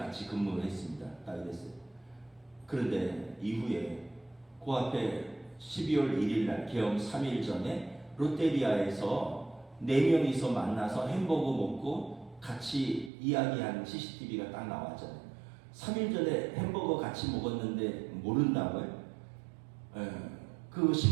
근무를 했습니다. 딱 이랬어요. 그런데 이후에 그 앞에 12월 1일 날 계엄 3일 전에 롯데리아에서 4명이서 만나서 햄버거 먹고 같이 이야기한 CCTV가 딱 나왔잖아요. 3일 전에 햄버거 같이 먹었는데 모른다고요? 그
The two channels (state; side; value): drops out; left; at 13.1 s